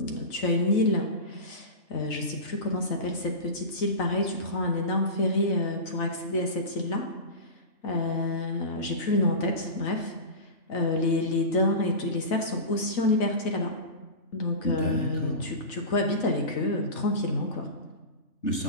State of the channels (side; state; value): right; late; 4.0 ms